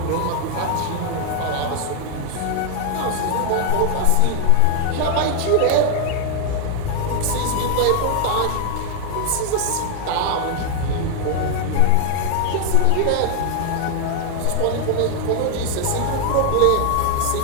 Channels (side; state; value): both; different; correlation 0.00